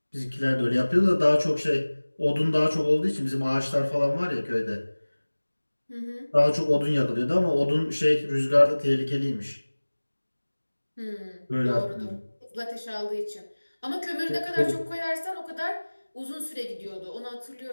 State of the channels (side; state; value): both; inverted; correlation -1.00